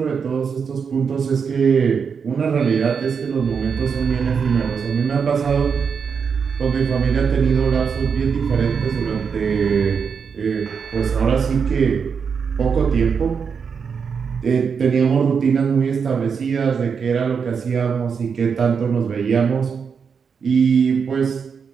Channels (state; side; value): quieter; left; 6.2 dB